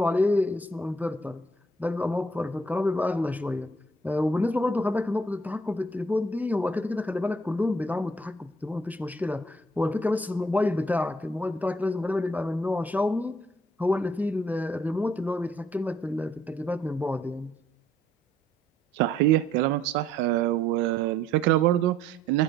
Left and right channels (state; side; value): normal; both; correlation 0.65